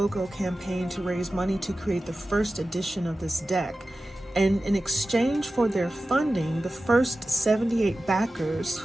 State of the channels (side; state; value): both; normal; correlation 0.95